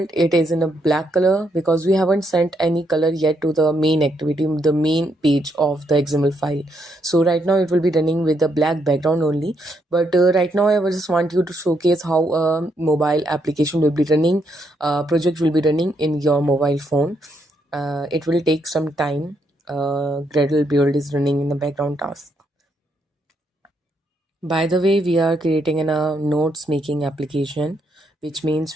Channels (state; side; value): normal; both; correlation 0.77